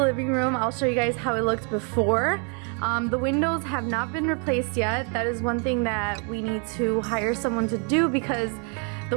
room. I'll show you guys how it looked before. The windows have not been replaced yet. That is one thing that we need to hire someone to do because the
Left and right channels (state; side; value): quieter; left; 37.7 dB